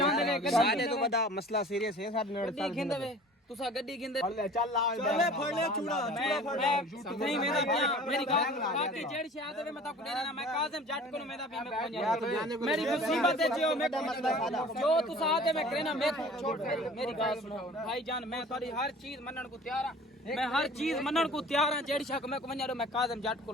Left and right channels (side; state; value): both; normal; correlation 0.45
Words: ਲੈ ਕੇ ਸਾਡੇ ਤੋਂ ਵੱਡਾ ਮਸਲਾ ਸੀਰੀਅਸ ਹੈ ਸਾਡੇ ਨਾਲ ਗੱਡੀ ਖਿੰਦੇ ਵੇ ਤੁਸੀਂ ਗੱਡੀ ਖਿੰਦੇ ਚੱਲ ਫੜ ਲੈ ਚੂੜਾ ਨਹੀਂ ਮੇਰਾ ਪਿਆ ਮੇਰੀ ਗੱਲ ਬਾਕੀ ਜਿਹੜੀ ਸ਼ਾਇਦ ਹੋਵੇ ਮੈਂ ਤਾਂ ਕੁੜੇ ਨਾ ਮੈਂ ਕਾਜ਼ਮ ਜੱਟ ਕੋਲ ਮੇਰਾ ਪਿਆ ਮੈਂ ਕੋਈ ਮੇਰੀ ਮੁਸੀਬਤ ਹੈ ਜੋ ਮੈਂ ਜੋ ਤੁਸੀਂ ਆਦੇ मैं कहना मैं छोड़ मेरी गल सुनो भाईजान मैं तुम्हारी हर चीज मनन को तैयार हां मैं हर चीज मनन को तैयार हां जेड़ी शक मैं को मैं काजम जट